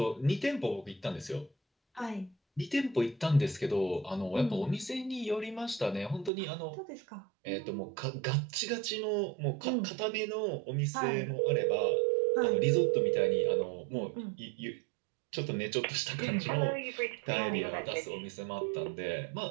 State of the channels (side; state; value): left; drops out; at 6.3 s